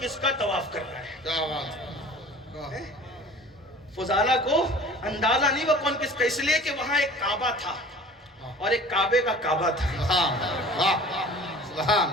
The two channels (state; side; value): normal; both; correlation 0.44